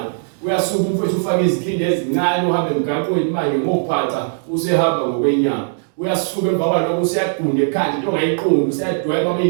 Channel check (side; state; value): left; silent; digital silence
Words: uyasuka umfowethu ufaka izikhindi ezincane uhambe emgaqweni manje ngophaca usehamba ngokwenyama uyasuka emva kwalokho useyagunda ekhanda into ongayiqondi useyadweba